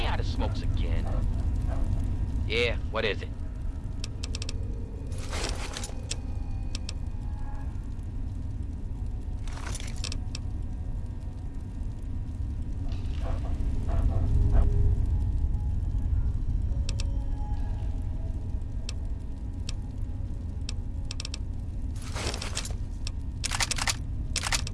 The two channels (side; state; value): both; identical; correlation 1.00